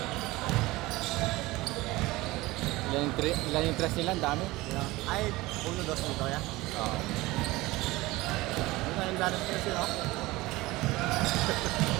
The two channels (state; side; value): quieter; left; 20.0 dB